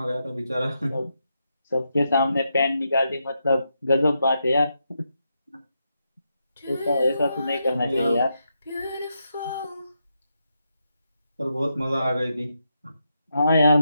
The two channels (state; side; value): inverted; both; correlation -0.84